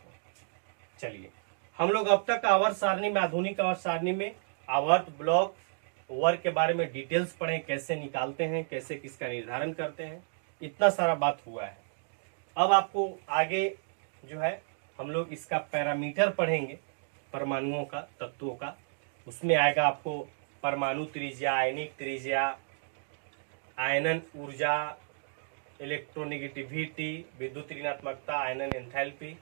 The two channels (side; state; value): left; silent; digital silence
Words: चलिए, हम लोग अब तक आवर्त सारणी में, आधुनिक आवर्त सारणी में आवर्त, ब्लॉक, वर्ग के बारे में डिटेल्स पढ़े, कैसे निकालते हैं, कैसे किसका निर्धारण करते हैं, इतना सारा बात हुआ है। अब आपको आगे जो है हम लोग इसका पैरामीटर पढ़ेंगे, परमाणुओं का, तत्वों का। उसमें आएगा आपको परमाणु त्रिज्या, आयनिक त्रिज्या, आयनन ऊर्जा, इलेक्ट्रोनेगेटिविटी, विद्युत ऋणात्मकता, आयनन एंथैल्पी,